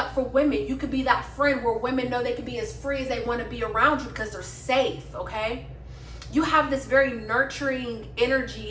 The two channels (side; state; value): both; identical; correlation 1.00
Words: for women. You could be that friend where women know they can be as free as they want to be around you because they're safe, okay? You have this very nurturing